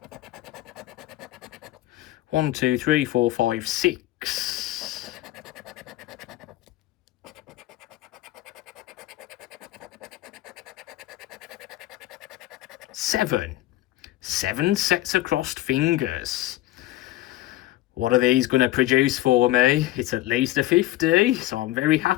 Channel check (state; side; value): quieter; right; 15.9 dB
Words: One, 2, 3, 4, 5, 6. 7. 7 sets of crossed fingers. What are these going to produce for me? It's at least a 50, so I'm very